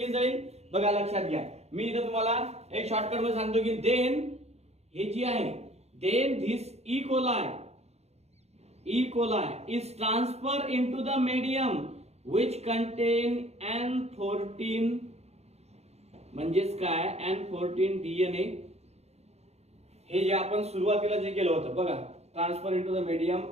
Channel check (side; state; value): left; late; 0.31 ms